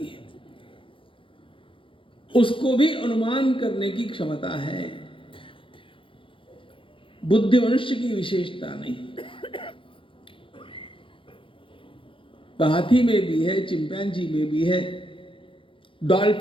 उसको भी अनुमान करने की क्षमता है। बुद्धि मनुष्य की विशेषता नहीं। हाथी में भी है, चिंपैंजी में भी है,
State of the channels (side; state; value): right; late; 0.25 ms